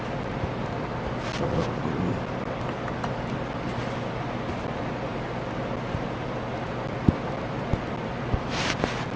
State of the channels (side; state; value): both; identical; correlation 1.00